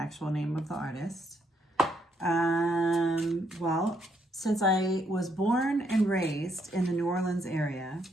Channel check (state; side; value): normal; both; correlation 0.74